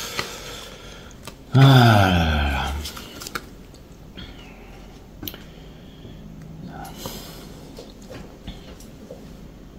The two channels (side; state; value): both; identical; correlation 1.00